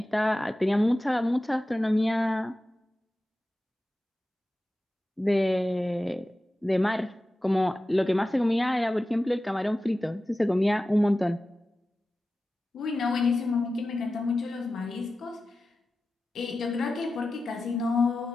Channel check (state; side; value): normal; both; correlation 0.94